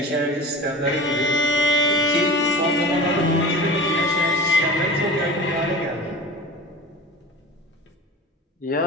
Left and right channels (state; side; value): normal; both; correlation 0.36